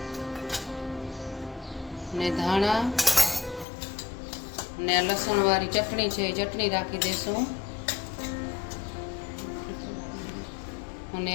ને ધાણા ને લસણ વાળી ચટણી છે, ચટણી રાખી દેશું અને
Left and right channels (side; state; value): right; drops out; at 3.7 s